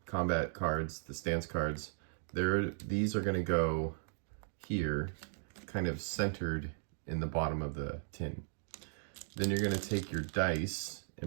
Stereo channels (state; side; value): silent; left; digital silence